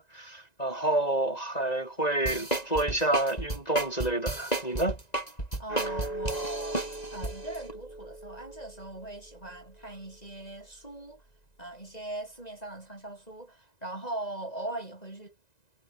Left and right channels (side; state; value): right; late; 1.9 ms